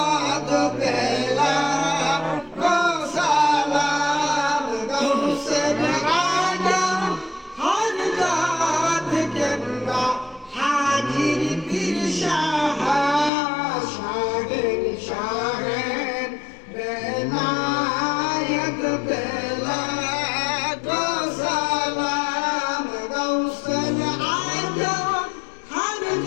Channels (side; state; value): right; drops out; at 13.3 s